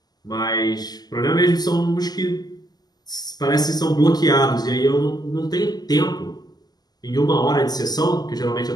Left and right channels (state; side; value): late; right; 0.20 ms